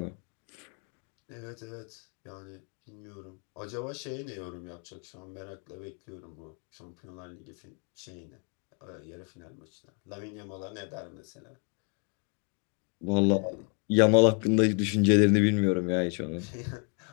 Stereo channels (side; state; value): right; quieter; 39.1 dB